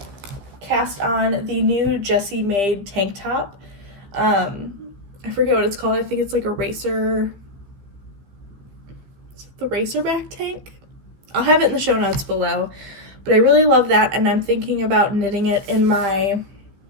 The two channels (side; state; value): left; late; 15 ms